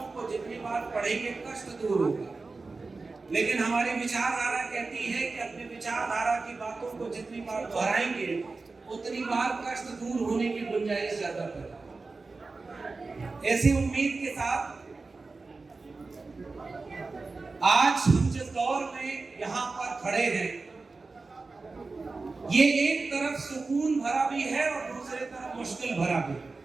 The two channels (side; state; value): left; quieter; 3.8 dB